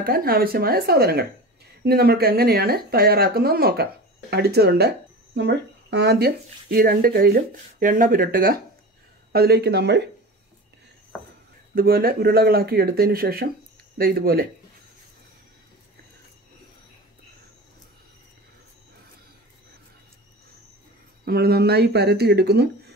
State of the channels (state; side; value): normal; both; correlation 0.32